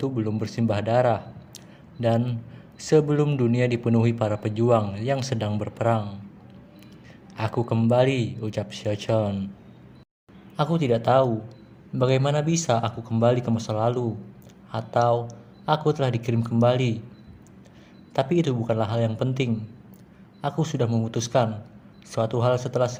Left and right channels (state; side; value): identical; both; correlation 1.00